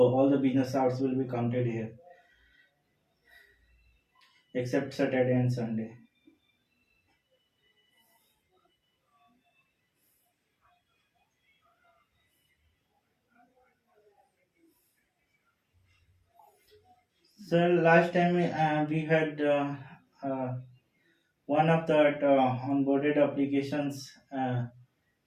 the business hours will be counted here, except Saturday and Sunday. So last time we had one of the onboarded applications,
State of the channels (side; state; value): both; identical; correlation 1.00